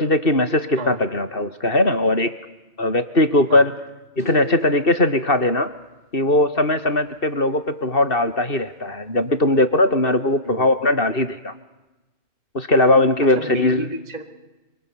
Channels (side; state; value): right; late; 2.7 ms